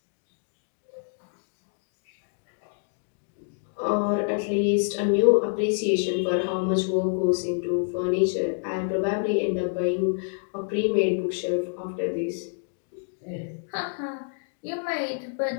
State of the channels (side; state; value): right; silent; digital silence